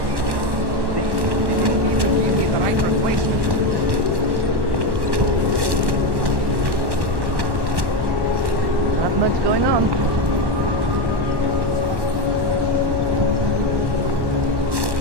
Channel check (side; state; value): left; late; 1.1 ms